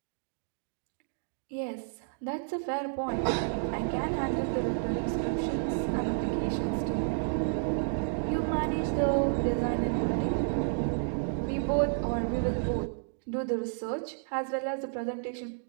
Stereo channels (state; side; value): silent; left; digital silence